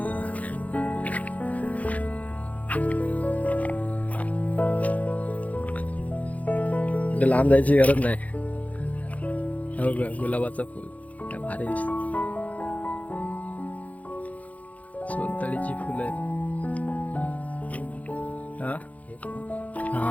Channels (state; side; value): late; right; 0.070 ms